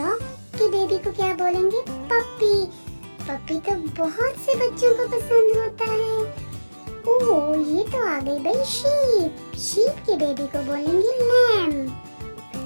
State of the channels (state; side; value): inverted; both; correlation -1.00